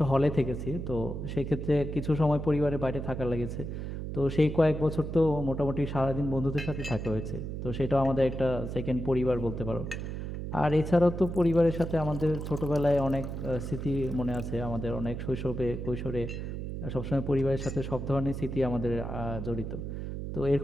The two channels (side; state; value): right; noise; hum, 5 dB below the sound